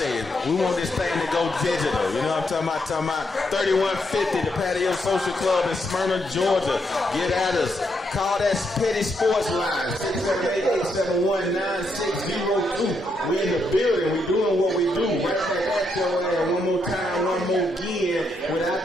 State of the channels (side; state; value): both; normal; correlation 0.78